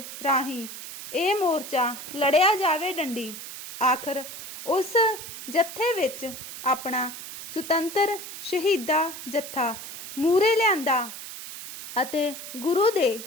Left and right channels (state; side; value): noise; right; hiss, 11 dB below the sound